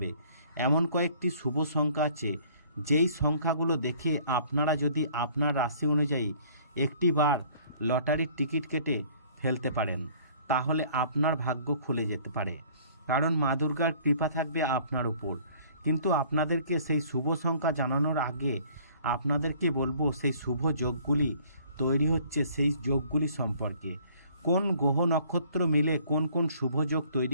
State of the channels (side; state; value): both; inverted; correlation -0.55